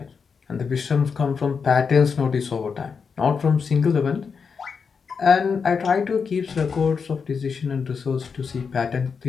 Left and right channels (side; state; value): right; quieter; 5.7 dB